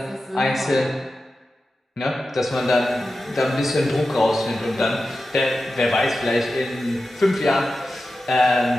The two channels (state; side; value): normal; both; correlation 0.93